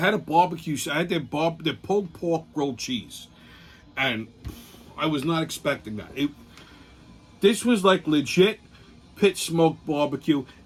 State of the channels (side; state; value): both; identical; correlation 1.00